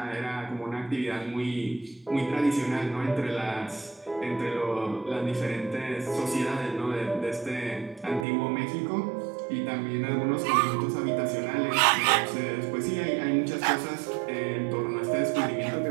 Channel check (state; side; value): drops out; left; at 8.2 s